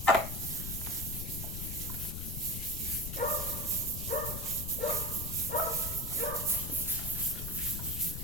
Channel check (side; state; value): left; noise; rumble, 5 dB below the sound